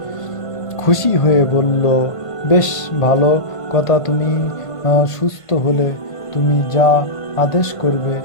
খুশি হয়ে বলল, বেশ ভালো কথা, তুমি সুস্থ হলে তুমি যা আদেশ করবে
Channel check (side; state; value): right; late; 1.5 ms